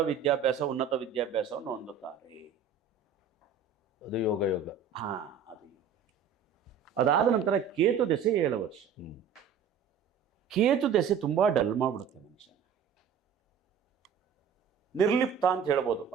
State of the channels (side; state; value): left; quieter; 6.9 dB